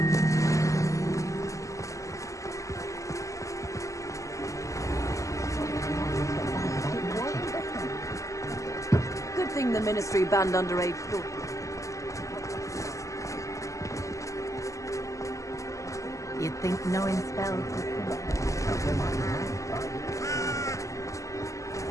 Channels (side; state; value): right; late; 0.16 ms